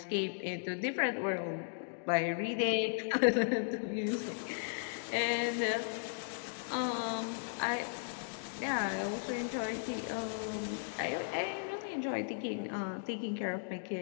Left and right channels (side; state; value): right; silent; digital silence